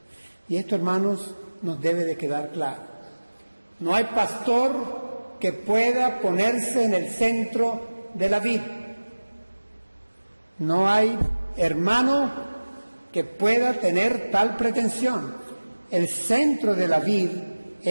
Y esto, hermanos, nos debe de quedar claro. No hay pastor que pueda ponerse en el centro de la vid. No hay hermano que pueda tener tal pretensión. El centro de la vid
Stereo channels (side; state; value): both; inverted; correlation -1.00